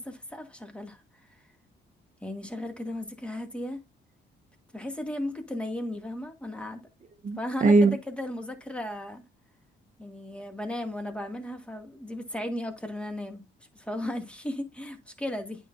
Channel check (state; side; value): normal; both; correlation 0.81